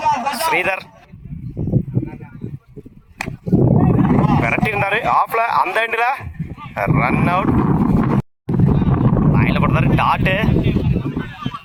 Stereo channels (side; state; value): both; identical; correlation 1.00